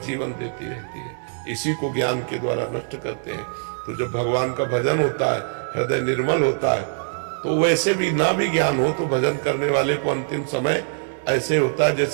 जीवन देती रहती है। इसी को ज्ञान के द्वारा नष्ट करते हैं। तो जब भगवान का भजन होता है, हृदय निर्मल होता है, तो वैसे भी ना भी ज्ञान हो तो भजन करने वाले को अंतिम समय ऐसे होता है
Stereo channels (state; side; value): silent; left; digital silence